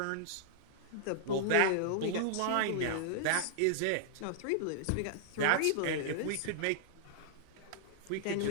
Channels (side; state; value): both; different; correlation -0.01